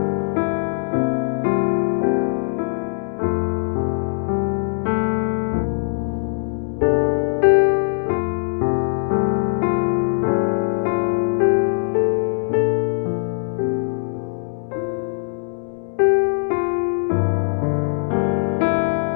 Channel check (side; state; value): right; silent; digital silence